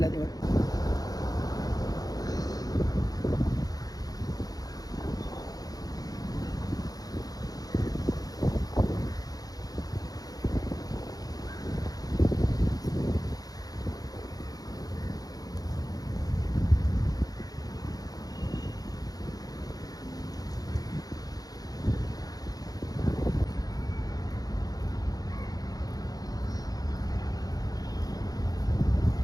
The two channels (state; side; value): late; right; 0.18 ms